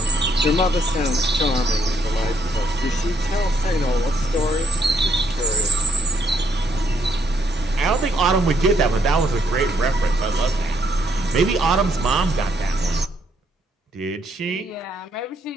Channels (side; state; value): both; normal; correlation 0.72